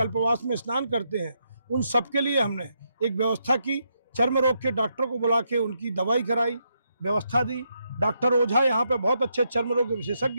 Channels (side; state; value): both; inverted; correlation -0.80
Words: में स्नान करते हैं। उन सबके लिए हमने एक व्यवस्था की, चर्म रोग के डॉक्टर को बुला के उनकी दवाई कराई, व्यवस्था दी। डॉक्टर ओझा यहाँ पे बहुत अच्छे चर्म रोग के